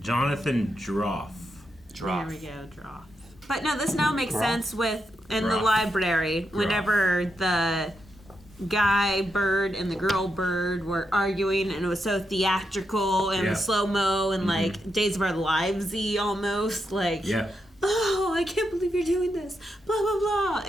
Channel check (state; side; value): normal; both; correlation 0.84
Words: Jonathan Droff. There we go, draw. But no, this now makes sense with in the Droff. library. Whenever the guy bird and the girl bird were arguing, and it was so theatrical and slow mo and like Days of Our Lives-y almost like. Yeah. Oh, I can't believe you're doing this. Blah blah blah,